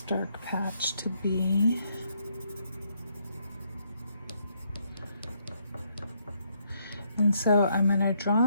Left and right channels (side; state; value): both; inverted; correlation -0.73